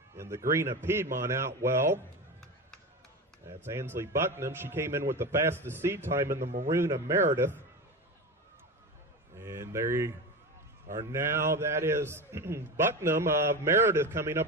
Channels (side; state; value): both; normal; correlation 0.24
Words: in the green of Piedmont out well. That's Ansley Bucknam. She came in with the fastest seed time in the maroon of Meredith. And there you are now. That is Bucknam of Meredith coming